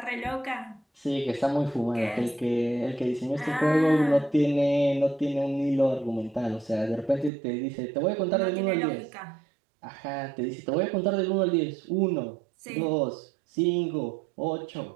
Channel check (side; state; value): left; drops out; at 7.3 s